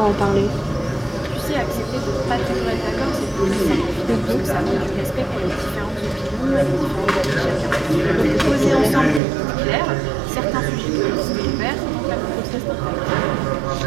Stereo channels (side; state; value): left; drops out; at 9.2 s